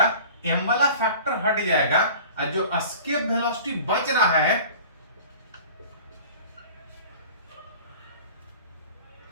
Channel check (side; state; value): both; inverted; correlation -0.43